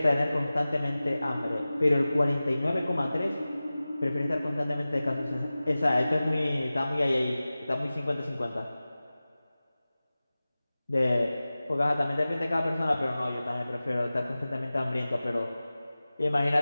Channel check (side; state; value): both; inverted; correlation -0.97